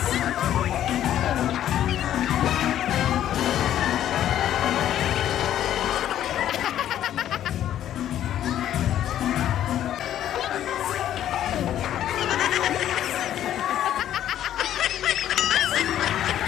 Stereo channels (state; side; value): quieter; right; 11.4 dB